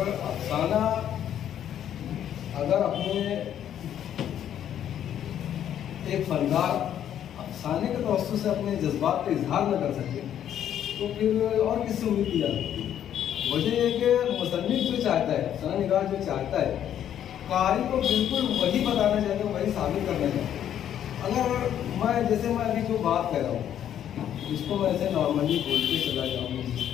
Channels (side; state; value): right; quieter; 10.2 dB